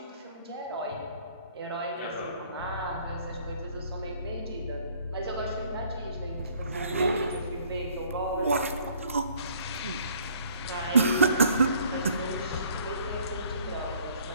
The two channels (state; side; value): inverted; both; correlation -0.58